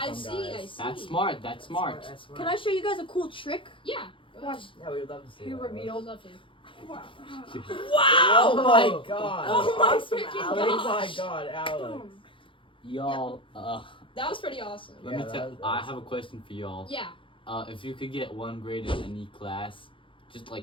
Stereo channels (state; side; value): late; right; 0.25 ms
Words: from, see, guys. I see. That's smart. That's smart. That's smart. Can I show you guys a cool trick? Yeah. Watch. Yeah, we would love to see He that. revealed. Love to. Wow. Oh Wow! my Whoa. god. Oh my Awesome, freaking Oh Alex. my gosh. god, Alex. Boom. Y'all, That was pretty awesome. let Yeah, me that tell. was I awesome. have a question for y'all. Yeah. If you could get one grade in any class, just